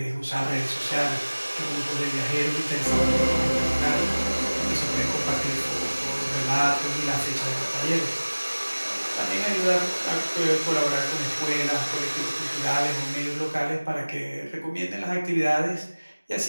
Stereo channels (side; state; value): both; inverted; correlation -1.00